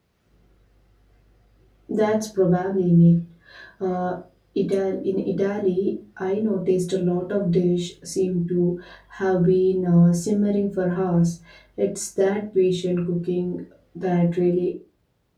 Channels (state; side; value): identical; both; correlation 1.00